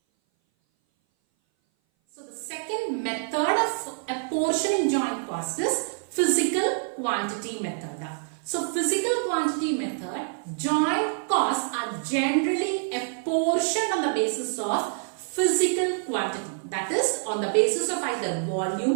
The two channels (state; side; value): silent; left; 58 dB below the other